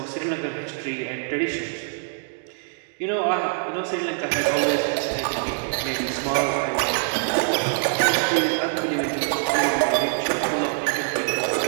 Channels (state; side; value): silent; left; digital silence